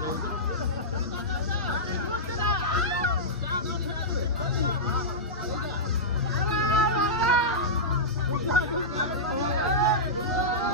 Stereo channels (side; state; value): both; normal; correlation -0.13